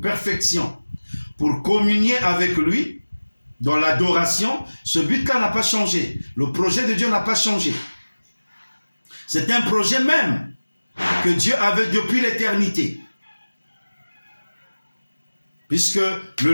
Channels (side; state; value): both; inverted; correlation -1.00